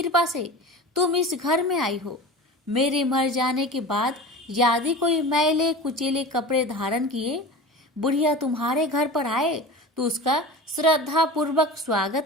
से तुम इस घर में आई हो। मेरे मर जाने के बाद यदि कोई मैले कुचेले कपड़े धारण किए बुढ़िया तुम्हारे घर पर आए तो उसका श्रद्धा पूर्वक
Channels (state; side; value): normal; both; correlation 0.33